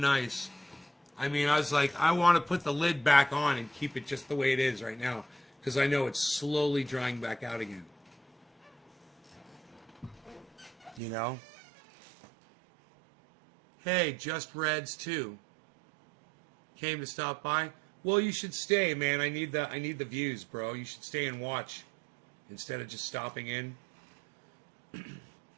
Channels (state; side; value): drops out; left; at 11.0 s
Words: I mean, I was like, I want to put the lid back on and keep it just the way it is right now, because I know it's slowly drying back out again. You know? Hey, Just Reds too. Came to stop by. Well, you should stay, man. I need the views, bro. You should stay and watch instead of just stopping in.